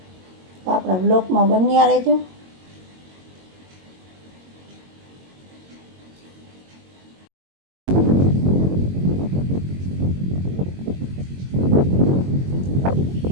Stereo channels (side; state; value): left; late; 22 ms